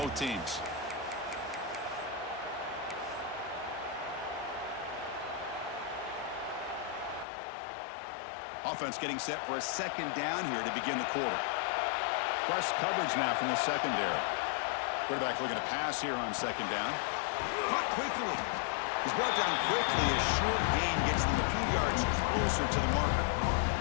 teams. Offense getting set for a 2nd down here to begin the quarter. Press coverage now from the secondary. Quarterback looking to pass here on 2nd down. Caught quickly. He's brought down quickly as short gain gets them a few yards closer to the marker.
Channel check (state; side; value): drops out; right; at 7.2 s